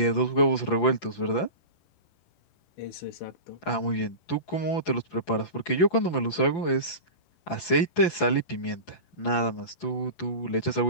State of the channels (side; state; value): right; late; 11 ms